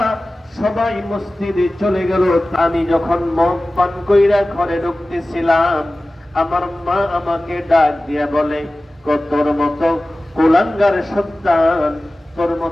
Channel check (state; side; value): normal; both; correlation 0.96